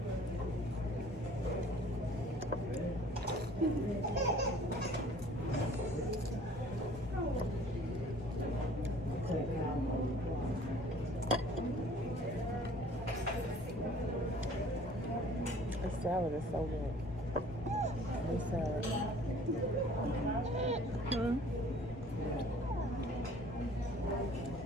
This salad is so good. This salad.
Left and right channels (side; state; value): both; normal; correlation 0.52